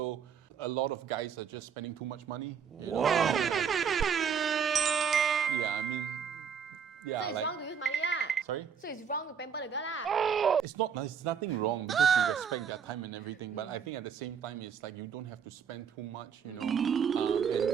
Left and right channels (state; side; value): quieter; left; 7.1 dB